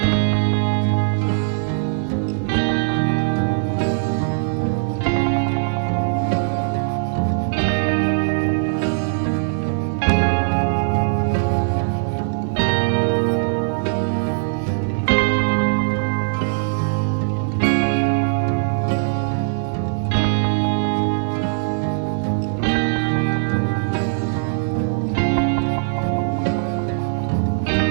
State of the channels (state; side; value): silent; left; digital silence